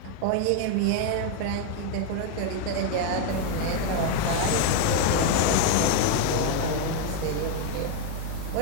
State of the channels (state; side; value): different; both; correlation 0.01